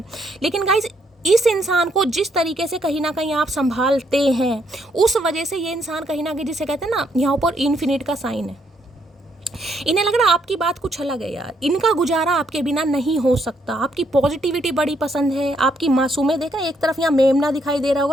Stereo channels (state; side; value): normal; both; correlation 0.73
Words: लेकिन गाइस, इस इंसान को जिस तरीके से कहीं ना कहीं आप संभालते हैं, उस वजह से ये इंसान कहीं ना कहीं, जिसे कहते हैं ना, यहाँ पर इन्फिनिट का साइन है। इन्हें लग रहा है आपकी बात कुछ अलग है यार, इनका गुजारा आपके बिना नहीं हो सकता। आपकी पॉजिटिविटी बड़ी पसंद है, आपकी मासूमियत। देखा, एक तरफ यहाँ मेमना दिखाई दे रहा